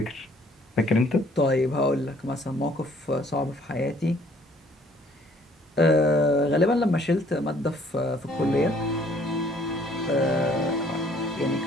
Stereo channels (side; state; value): both; normal; correlation 0.60